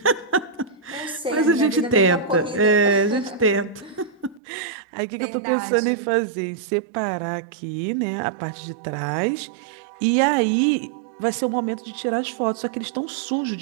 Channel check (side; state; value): left; drops out; at 4.4 s